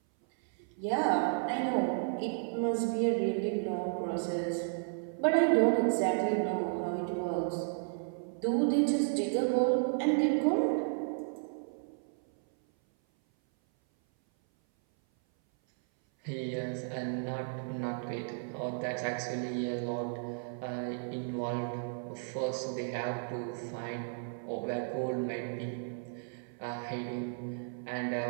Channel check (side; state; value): left; silent; 56 dB below the other